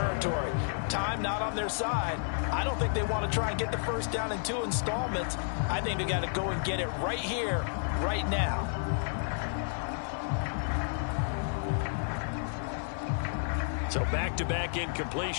Time not on their side. I don't think they want to try and get the first down in 2 installments. I think they got to go and get it right here, right now. So back-to-back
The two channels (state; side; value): silent; right; 57 dB below the other